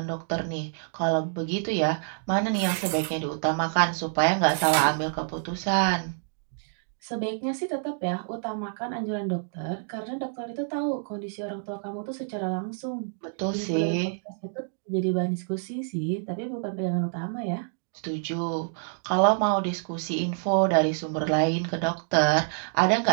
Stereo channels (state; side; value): silent; left; digital silence